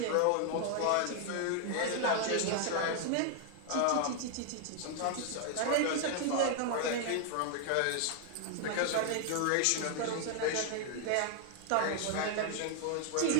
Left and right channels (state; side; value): different; both; correlation 0.00